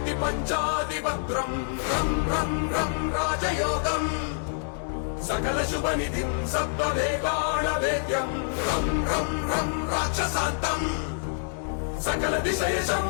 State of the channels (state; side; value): silent; right; digital silence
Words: रं रं रं राजयोगम् सकलशुभनिधिं सप्तवेगाणवेद्यं रं रं रं राक्षसान्तम् सकलदिशयशं